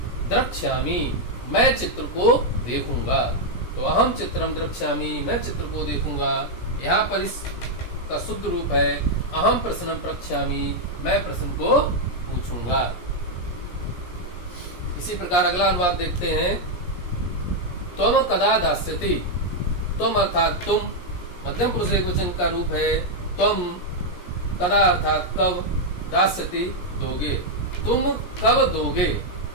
द्रक्ष्यामि, मैं चित्र को देखूंगा। तो अहम चित्रम द्रक्ष्यामि, मैं चित्र को देखूंगा। यहाँ पर इसका शुद्ध रूप है अहम प्रश्नम प्रक्ष्यामि, मैं प्रश्न को पूछूंगा। इसी प्रकार अगला अनुवाद देखते हैं। त्वम कदा दास्यति। त्वम अर्थात तुम, मध्यम पुरुष एकवचन का रूप है। त्वम कदा अर्थात कब, दास्यति दोगे, तुम कब दोगे,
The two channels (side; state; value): right; late; 17 ms